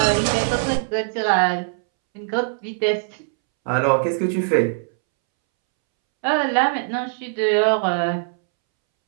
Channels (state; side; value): silent; left; 65 dB below the other